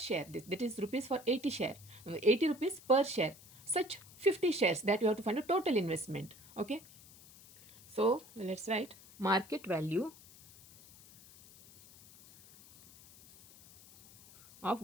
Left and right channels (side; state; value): left; noise; hiss, 22 dB below the sound